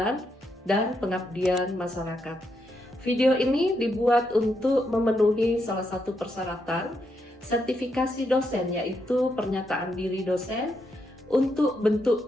dan pengabdian masyarakat. Video ini dibuat untuk memenuhi salah satu persyaratan sertifikasi dosen, yaitu pernyataan diri dosen untuk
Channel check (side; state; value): both; normal; correlation 0.80